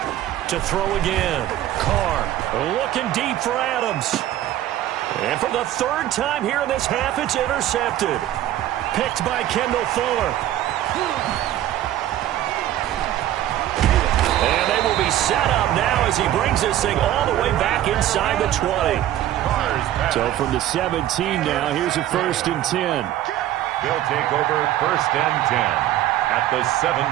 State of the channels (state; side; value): quieter; left; 13.0 dB